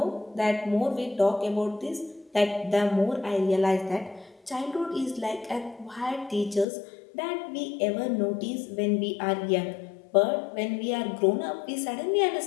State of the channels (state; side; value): drops out; right; at 6.7 s